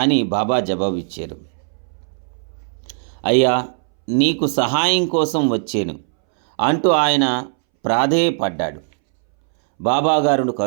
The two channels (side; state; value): left; silent; 65 dB below the other